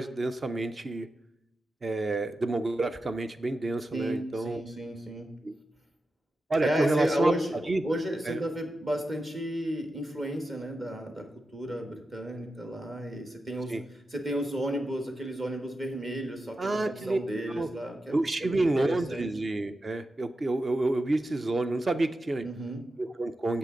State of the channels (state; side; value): normal; both; correlation 0.90